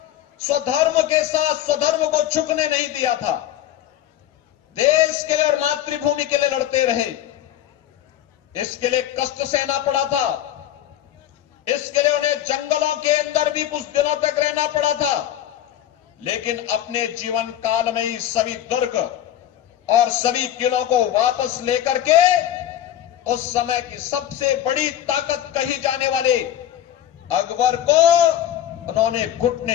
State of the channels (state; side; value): quieter; right; 11.8 dB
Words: स्वधर्म को झुकने नहीं दिया था। देश के लिए और मातृभूमि के लिए लड़ते रहे। इसके लिए कष्ट सहना पड़ा था। इसके लिए उन्हें जंगलों के अंदर भी कुछ दिनों तक रहना पड़ा था, लेकिन अपने जीवन काल में ही सभी दुर्ग और सभी किलों को वापस लेकर के उस समय की सबसे बड़ी ताकत कही जाने वाले अकबर को उन्होंने घुटने